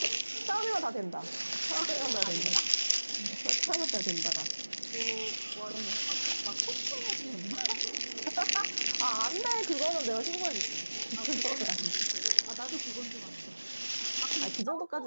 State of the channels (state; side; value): inverted; both; correlation -1.00